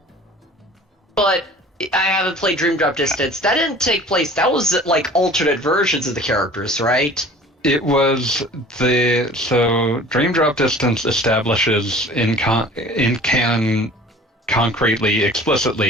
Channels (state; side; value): normal; both; correlation 0.46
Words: But I haven't played Dream Drop Distance. That didn't take place. That was like alternate versions of the characters, right? It was so Dream Drop Distance establishes in canon concretely,